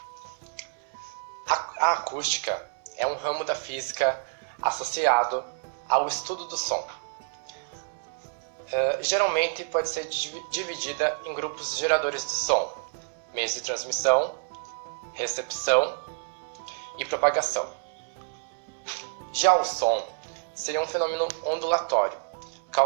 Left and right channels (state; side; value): silent; left; digital silence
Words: A acústica é um ramo da física associado ao estudo do som. Geralmente pode ser dividida em grupos de geradores de som, meios de transmissão, recepção e propagação. Já o som seria um fenômeno ondulatório,